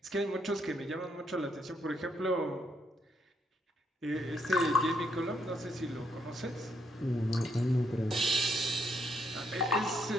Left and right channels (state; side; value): normal; both; correlation 0.75